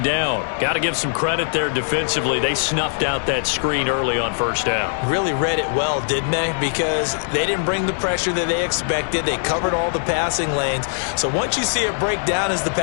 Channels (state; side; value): silent; right; digital silence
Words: down. Got to give some credit there defensively. They snuffed out that screen early on 1st down. Really read it well, didn't they? Because they didn't bring the pressure that they expected. They covered all the passing lanes. So once you see it break down as the